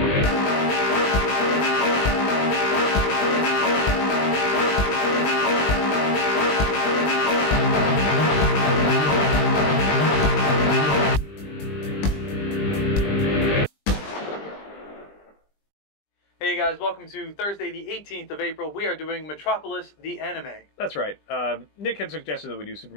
Hey guys, welcome to Thursday the 18th of April. We are doing Metropolis, the anime. That's right. Nick had suggested that we do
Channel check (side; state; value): right; late; 20 ms